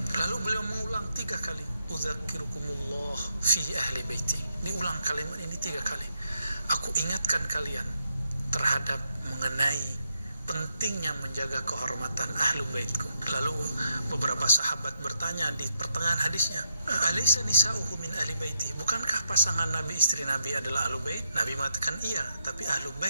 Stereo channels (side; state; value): both; inverted; correlation -0.81